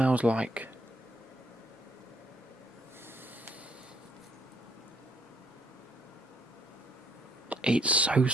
like it's so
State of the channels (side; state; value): both; normal; correlation 0.67